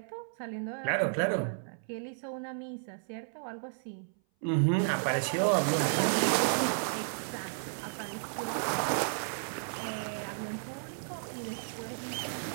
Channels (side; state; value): left; silent; 56 dB below the other